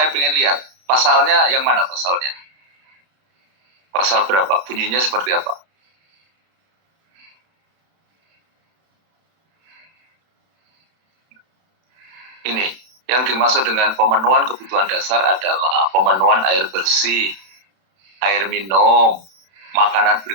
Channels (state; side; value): late; left; 31 ms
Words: pengen lihat. Pasalnya yang mana pasalnya? Pasal berapa? Bunyinya seperti apa? Ini, yang dimaksud dengan pemenuhan kebutuhan dasar adalah pemenuhan air bersih, air minum, makanan